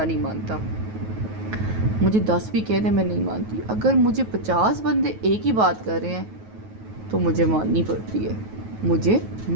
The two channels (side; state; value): left; late; 9.3 ms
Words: مانتا. مجھے 10 بھی کہہ دیں میں نہیں مانتی. اگر مجھے 50 بندے ایک ہی بات کر رہے ہیں تو مجھے ماننی پڑتی